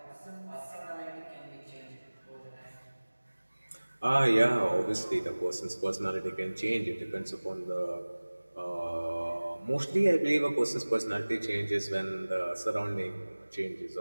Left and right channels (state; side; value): inverted; both; correlation -1.00